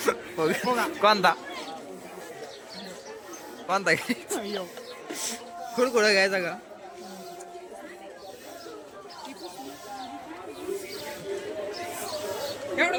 फुगा कोणता कोणता घ्यायचा? कुडकुडं घ्यायचा का? एवढं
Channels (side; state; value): both; identical; correlation 1.00